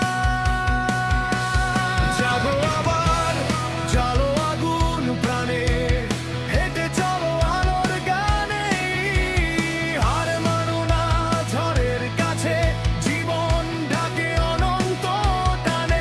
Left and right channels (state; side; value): identical; both; correlation 1.00